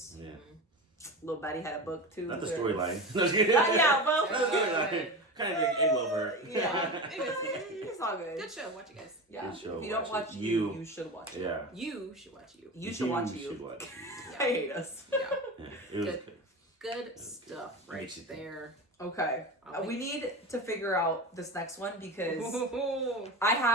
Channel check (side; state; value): both; normal; correlation 0.26